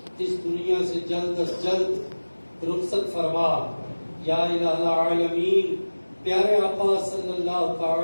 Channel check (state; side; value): inverted; both; correlation -1.00